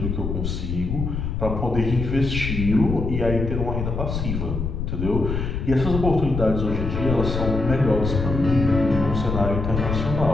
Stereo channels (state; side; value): noise; left; rumble, 3 dB below the sound